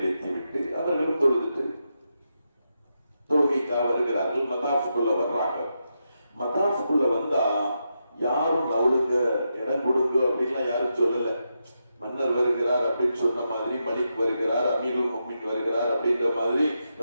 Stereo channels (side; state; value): both; inverted; correlation -0.85